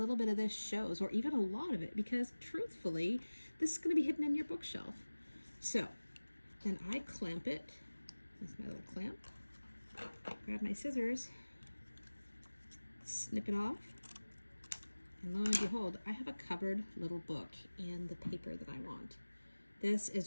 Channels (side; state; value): both; inverted; correlation -1.00